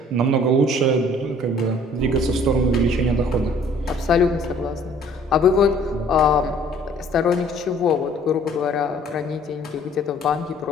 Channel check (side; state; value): both; normal; correlation 0.55